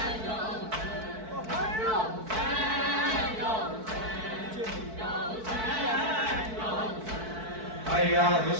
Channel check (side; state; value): left; late; 4.6 ms